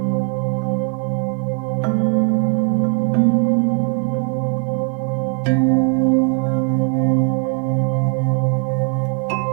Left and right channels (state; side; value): quieter; left; 39.7 dB